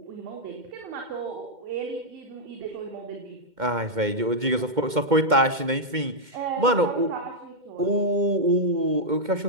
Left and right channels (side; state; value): left; late; 2.1 ms